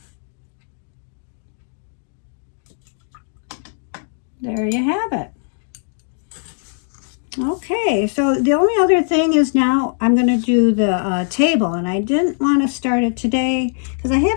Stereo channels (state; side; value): silent; right; 65 dB below the other